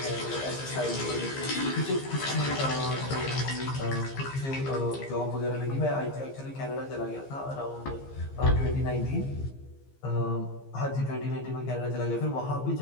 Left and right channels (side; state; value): right; late; 15 ms